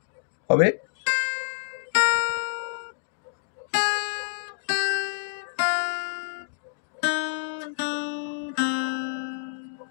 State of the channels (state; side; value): silent; right; digital silence